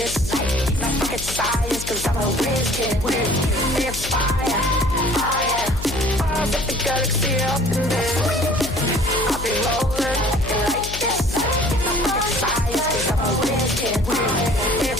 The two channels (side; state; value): left; noise; hum, 10 dB below the sound